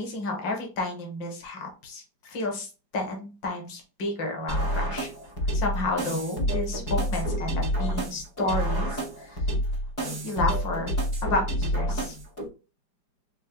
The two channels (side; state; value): right; late; 4.8 ms